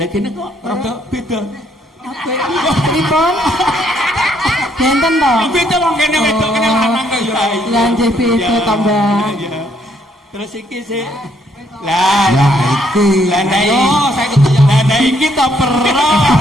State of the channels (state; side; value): normal; both; correlation 0.70